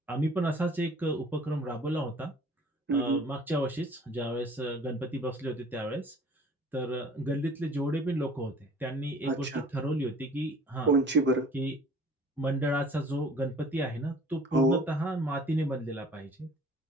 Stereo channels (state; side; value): normal; both; correlation 0.50